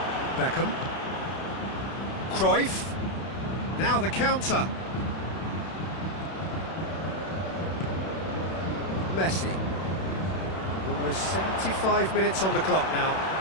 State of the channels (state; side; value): late; right; 31 ms